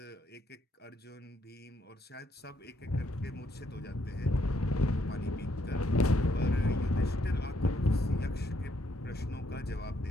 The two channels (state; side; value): normal; both; correlation 0.73